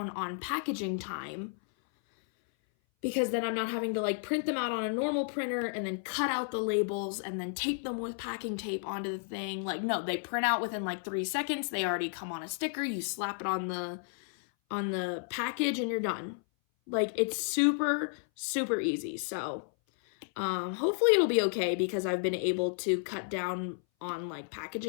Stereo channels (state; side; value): silent; right; 56 dB below the other